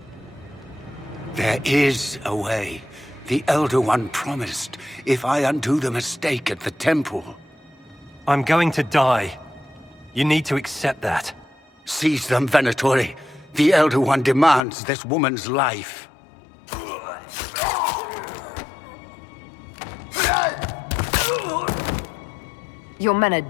There is a way. The Elder One promised, if I undo the mistake at the temple. I'm going to die. You need to accept that. Seize them, Venatori. The Elder One demands this woman's life. Your men are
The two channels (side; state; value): right; drops out; at 14.6 s